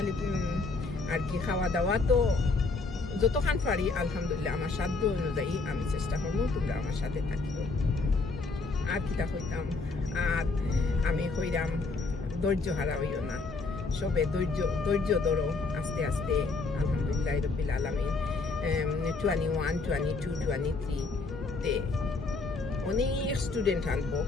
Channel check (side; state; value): right; quieter; 3.8 dB